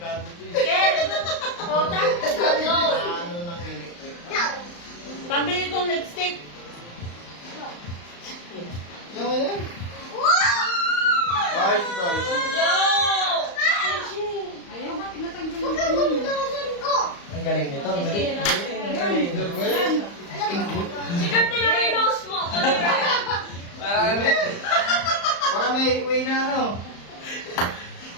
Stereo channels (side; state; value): right; late; 35 ms